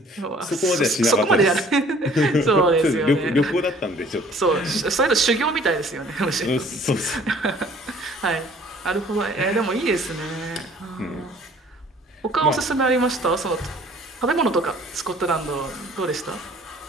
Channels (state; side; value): normal; both; correlation 0.54